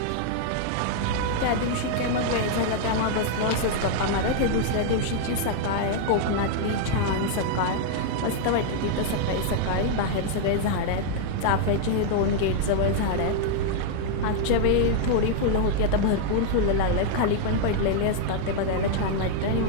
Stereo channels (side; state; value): both; different; correlation -0.01